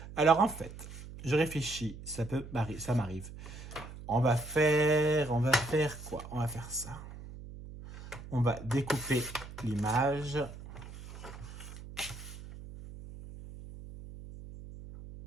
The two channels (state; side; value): noise; right; hum, 13 dB below the sound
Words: Alors, en fait, je réfléchis. Ça m'arrive. On va faire quoi? On va faire ça. On va découper l'image.